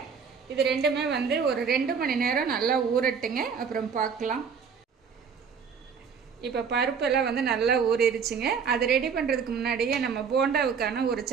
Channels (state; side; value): quieter; left; 6.3 dB